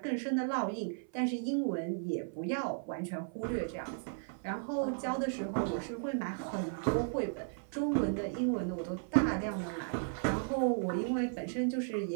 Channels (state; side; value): silent; left; 54 dB below the other